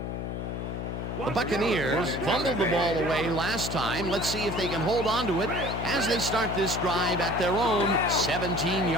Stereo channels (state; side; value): noise; left; hum, 5 dB below the sound